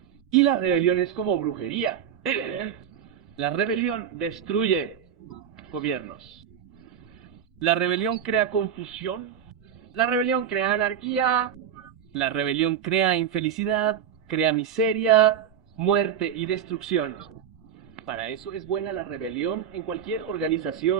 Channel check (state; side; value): quieter; left; 8.8 dB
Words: Y la rebelión es como brujería. La rebelión destruye gobiernos. La rebelión crea confusión. La rebelión crea anarquía. La rebelión crea infelicidad, crea miseria, muerte y destrucción. Para eso es buena la rebelión en cualquier